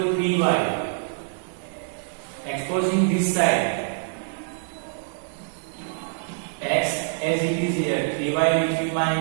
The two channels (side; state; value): left; silent; 55 dB below the other